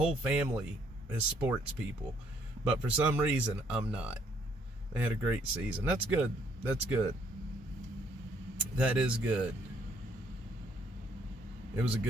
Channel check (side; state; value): both; normal; correlation 0.67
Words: family is sports people. But for some reason, I'm not. They had a great season. That's good. That is good. It was a